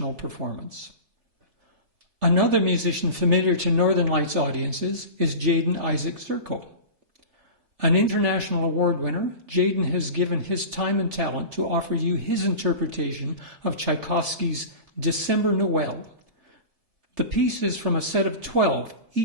performance. Another musician familiar to Northern Lights audiences is Jaden Isaac Zirko. An international award winner, Jaden has given his time and talent to offer you his interpretation of Tchaikovsky's December Noel. The piece is from a set of 12,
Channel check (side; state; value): left; late; 3.4 ms